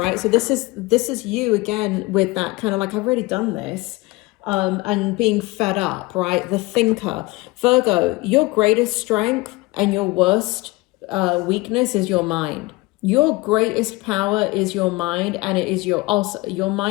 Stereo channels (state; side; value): quieter; right; 22.5 dB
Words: So this is you again with that kind of like, I've already done this. And being fed up, right? The thinker. Virgo, your greatest strength and your worst weakness is your mind. Your greatest power is your mind, and it is your